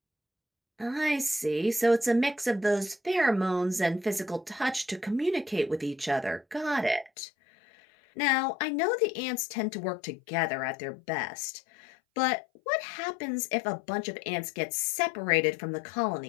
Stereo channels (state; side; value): drops out; right; at 7.1 s